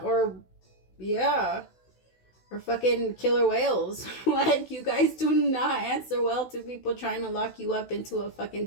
or, yeah. Or fucking killer whales. Like, you guys do not answer well to people trying to lock you up into a fucking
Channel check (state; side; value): late; right; 16 ms